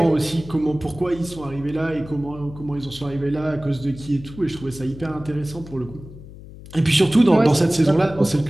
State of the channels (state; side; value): noise; left; hum, 16 dB below the sound